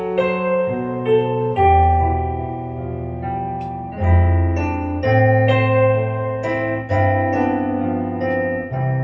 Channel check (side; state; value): both; identical; correlation 1.00